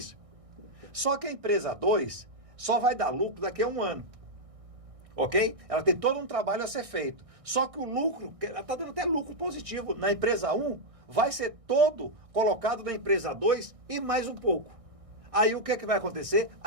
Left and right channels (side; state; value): left; late; 1.6 ms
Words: Só que a empresa 2 só vai dar lucro daqui a 1 ano. Ok? Ela tem todo um trabalho a ser feito. Só que o lucro, ela está dando até lucro positivo na empresa 1, vai ser todo colocado na empresa 2 e mais um pouco. Aí o que é que vai acontecer?